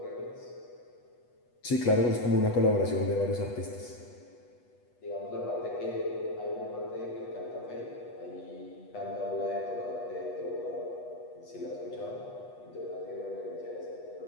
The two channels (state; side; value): late; right; 8.2 ms